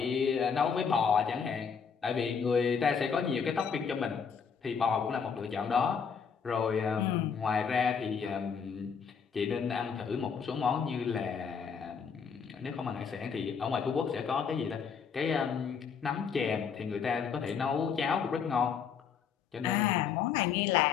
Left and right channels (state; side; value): quieter; right; 6.5 dB